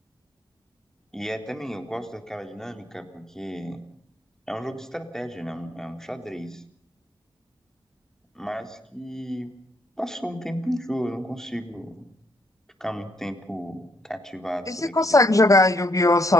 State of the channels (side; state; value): both; normal; correlation 0.71